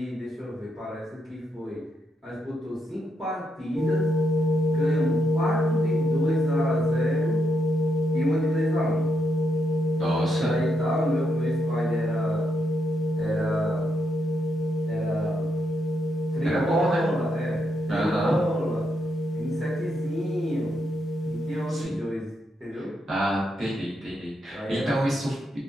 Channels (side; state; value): both; normal; correlation 0.80